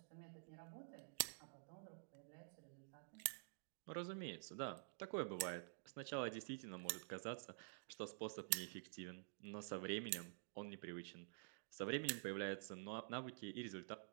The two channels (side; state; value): left; silent; digital silence